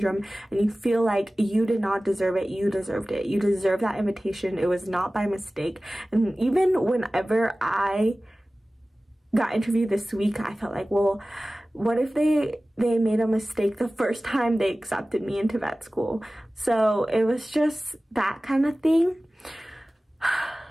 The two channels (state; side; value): normal; both; correlation 0.97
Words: and you feel like you did not deserve it, you deserved it. You deserve that invitation. It was not by mistake. And even whenever I got interviewed this week, I felt like, well, what if they made a mistake the first time they accepted me into vet school? So it was just that kind of thing.